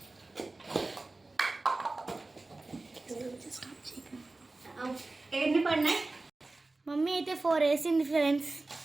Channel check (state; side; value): quieter; left; 3.2 dB